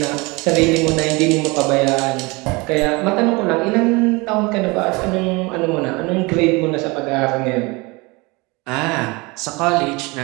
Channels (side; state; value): left; quieter; 25.5 dB